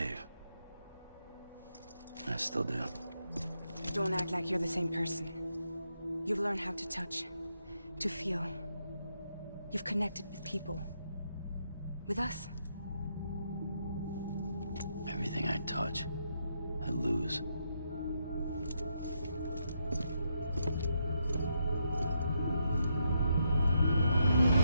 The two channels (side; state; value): both; inverted; correlation -0.79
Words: I still do. Don't act like you're the same person. You've learned how to touch, to feel. You've connected with people. With us. Everything I touch, I lose.